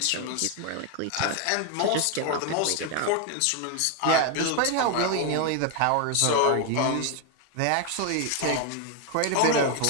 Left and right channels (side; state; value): both; different; correlation 0.01